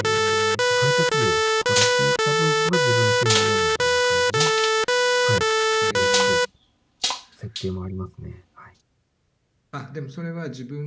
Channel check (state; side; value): identical; both; correlation 1.00